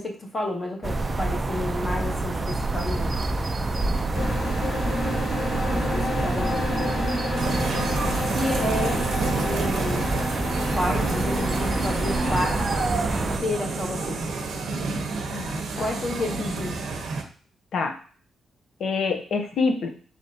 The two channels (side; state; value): both; normal; correlation 0.83